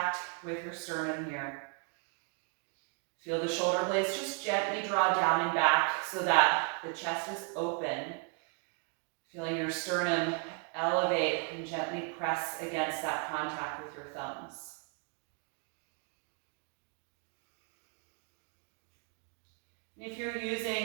with your sternum here. Feel the shoulder blades just gently draw down and back so that the chest is open. Feeling your sternum elevate and gently press against that contact with your thumbs. And if you're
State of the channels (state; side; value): quieter; left; 39.6 dB